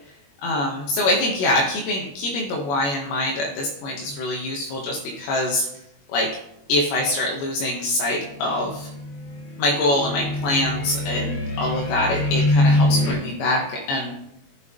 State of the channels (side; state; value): right; late; 21 ms